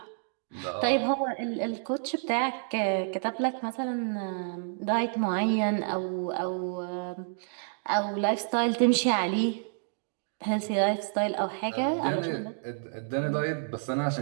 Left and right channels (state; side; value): silent; left; digital silence